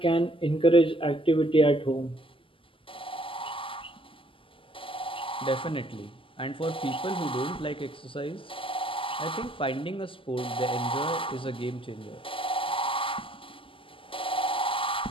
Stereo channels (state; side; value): late; right; 0.25 ms